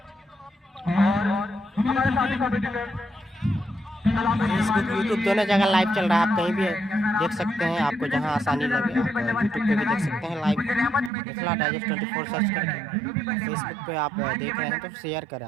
और हमारे साथी कॉम्पिटिटर फेसबुक यूट्यूब दोनों जगह लाइव चल रहा है। आप कहीं भी देख सकते हैं, आपको जहां आसानी लगे। यूट्यूब पे भी देख सकते हैं लाइव, मिथिला डाइजेस्ट 24 सर्च करके। फेसबुक पे आप देख रहे हैं तो शेयर करें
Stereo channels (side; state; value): left; drops out; at 11.1 s